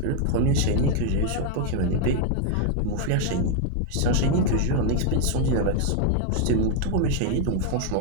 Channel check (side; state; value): both; different; correlation 0.00